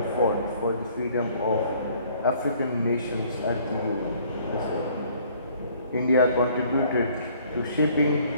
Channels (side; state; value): both; inverted; correlation -0.59